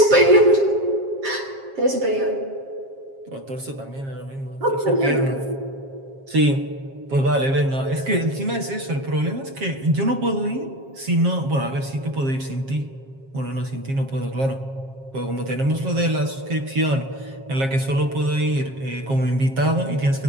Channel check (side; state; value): left; late; 7.4 ms